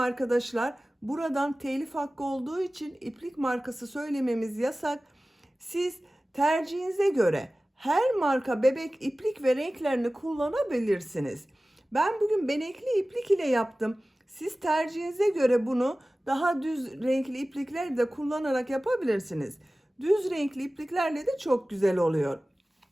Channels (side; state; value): both; normal; correlation 0.97